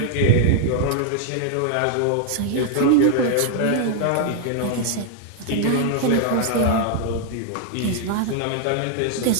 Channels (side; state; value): both; different; correlation 0.00